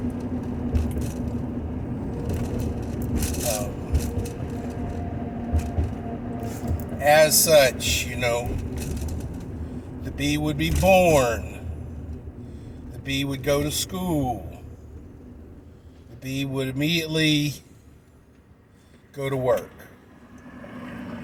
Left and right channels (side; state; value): both; identical; correlation 1.00